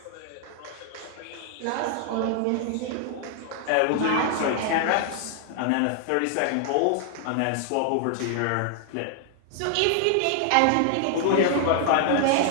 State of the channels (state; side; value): different; both; correlation 0.00